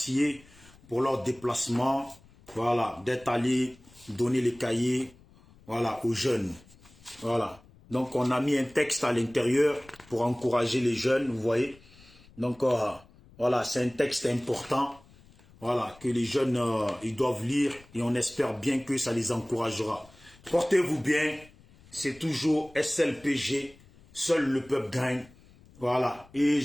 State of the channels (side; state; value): left; noise; rumble, 26 dB below the sound